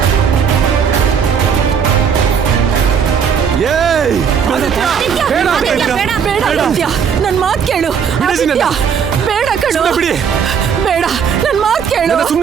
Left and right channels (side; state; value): left; quieter; 7.0 dB